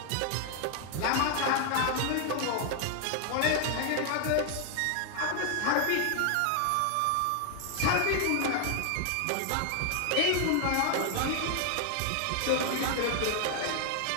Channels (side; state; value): both; different; correlation 0.00